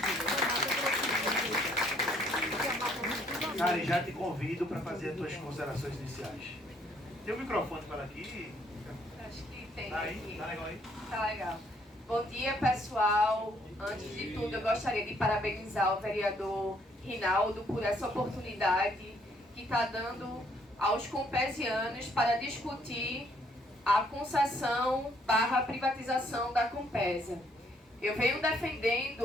Cari, já te convido para fazer as tuas considerações iniciais. Tem um microfone para aqui? Acho que tem Tá aí? aqui. Tá legal aí? Tá legal. Bom dia, pessoal. Antes de tudo, eu gostaria de parabenizar o vereador Rinaldo por essa oportunidade que está dando aos compesianos para discutir a concessão / privatização da Compesa. Eu venho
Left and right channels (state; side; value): normal; both; correlation 0.67